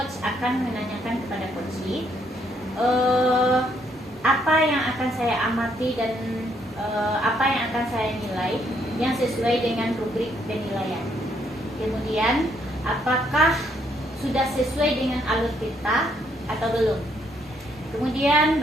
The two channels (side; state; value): both; normal; correlation 0.71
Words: akan menanyakan kepada coachee apa yang akan saya amati dan apa yang akan saya nilai yang sesuai dengan rubrik penilaian. Kemudian apakah sudah sesuai dengan alur kita atau belum. Kemudian